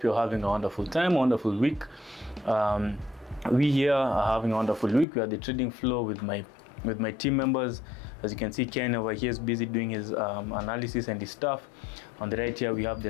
you're having a wonderful time, wonderful week. We here are having a wonderful week. We are the trading floor with my team members. As you can see, Ken over here is busy doing his analysis and his stuff. On the right here, we have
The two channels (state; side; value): drops out; right; at 5.1 s